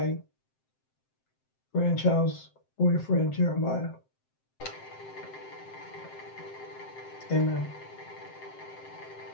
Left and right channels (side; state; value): right; late; 7.7 ms